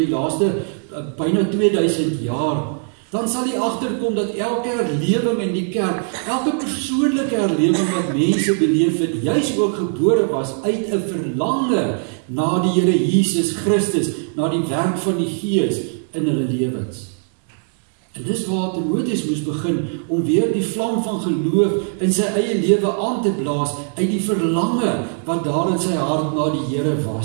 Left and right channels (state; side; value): silent; left; 58 dB below the other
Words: laaste byna 2000 jaar, dan sal jy agterkom dat elke herlewing in die kerk, elke persoonlike herlewing wat mense beleef het, juis ook gebore was uit 'n verlange na die Here Jesus Christus, na die werk van die Gees in hulle lewens. En dis waar Timoteus moes begin om weer die vlam van geloof in sy eie lewe aan te blaas uit die verlange wat daar in sy hart na die Here